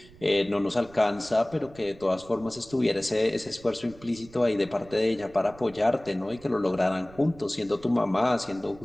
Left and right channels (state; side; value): noise; right; rumble, 22 dB below the sound